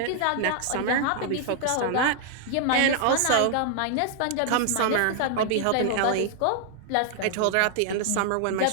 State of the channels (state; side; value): different; both; correlation 0.00